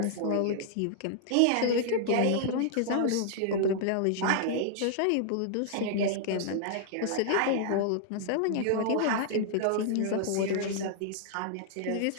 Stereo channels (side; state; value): both; different; correlation -0.01